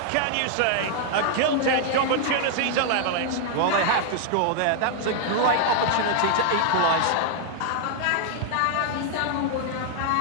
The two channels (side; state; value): both; different; correlation 0.00